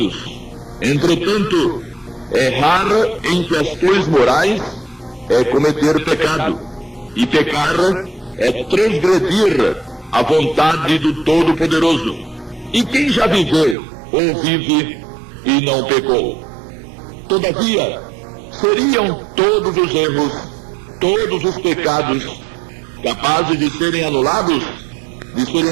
Entretanto, errar em questões morais é cometer pecado, e pecar é transgredir a vontade do Todo-Poderoso. E quem já viveu ou vive e não pecou? Todavia, seriam todos os erros, todos os pecados, capazes de serem anulados, de serem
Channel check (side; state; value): left; drops out; at 13.8 s